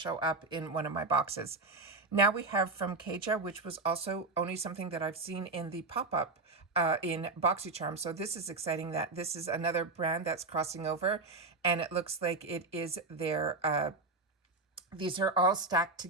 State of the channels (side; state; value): left; quieter; 3.5 dB